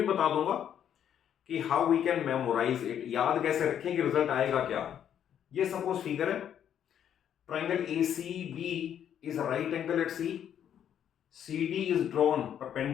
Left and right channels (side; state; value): right; quieter; 9.5 dB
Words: बता दूंगा कि how we can memorise it, याद कैसे रखें कि रिजल्ट आएगा क्या। ये सपोज फिगर है, triangle A C B is right angle at C, C D is drawn